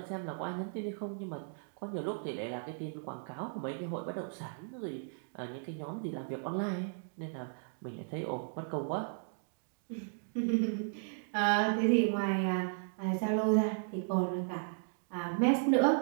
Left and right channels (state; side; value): silent; left; digital silence